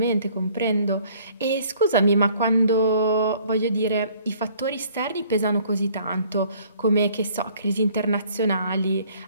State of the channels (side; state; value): both; inverted; correlation -0.57